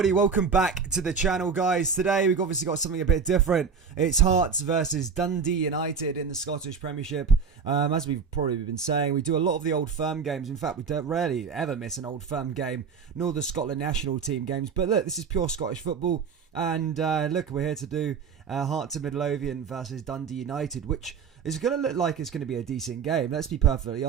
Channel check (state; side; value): quieter; left; 6.0 dB